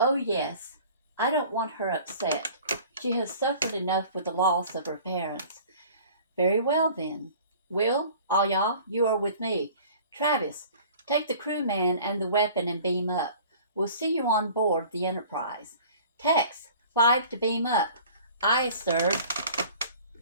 yes. I don't want her upset. She has suffered enough with the loss of her parents. Very well, then. Will, all y'all, you are with me. Travis, take the crewman and the weapon and beam up. We'll see you on board the Enterprise. Tex, 5 to beam up. Aye, sir.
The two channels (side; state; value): both; inverted; correlation -0.47